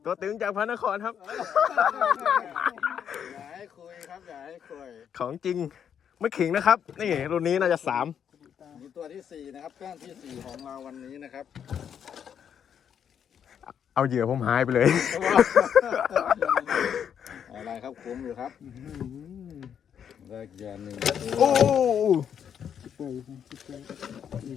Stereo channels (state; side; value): quieter; right; 8.3 dB